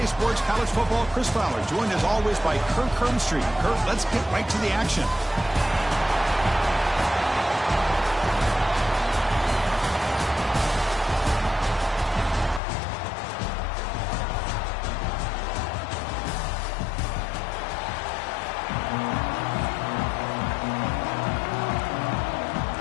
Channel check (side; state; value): right; drops out; at 12.6 s